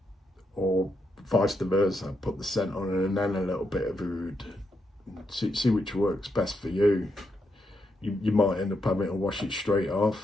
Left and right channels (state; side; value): normal; both; correlation 0.81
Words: or vice versa. Put the scent on and then a little bit of oud. See which works best for you. You might end up having to wash it straight